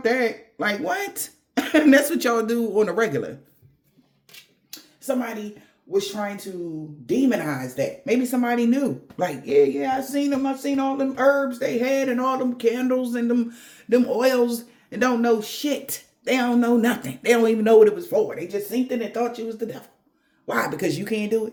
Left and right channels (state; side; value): identical; both; correlation 1.00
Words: that. Like, what? And that's what y'all do on a regular. Somebody was trying to demonize that. Maybe somebody knew. Like, yeah, I seen them. I seen all them herbs they had and all them candles and them oils and don't know shit. They don't know nothing. They don't even know what it was for. They just seen it and thought you was the devil. Why? Because you can't do